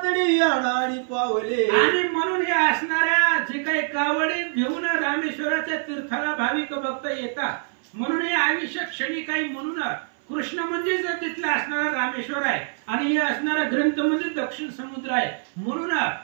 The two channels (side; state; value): left; silent; 58 dB below the other